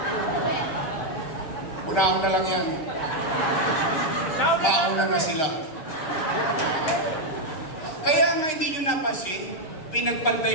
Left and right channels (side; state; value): right; late; 6.5 ms